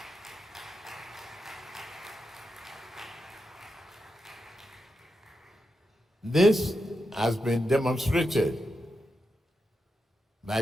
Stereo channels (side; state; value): both; normal; correlation 0.87